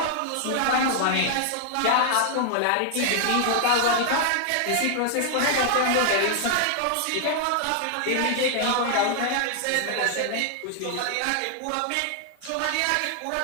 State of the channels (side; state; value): both; different; correlation 0.00